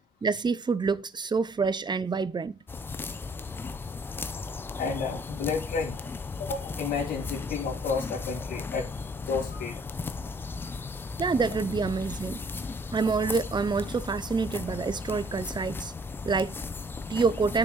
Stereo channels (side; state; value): both; normal; correlation 0.60